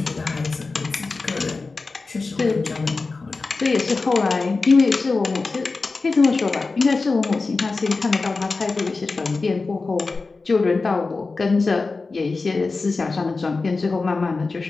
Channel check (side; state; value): right; quieter; 3.9 dB